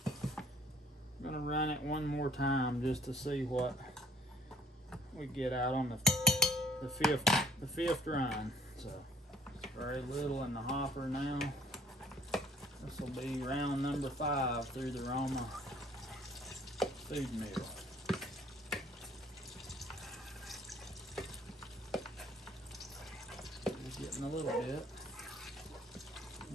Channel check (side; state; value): both; normal; correlation 0.59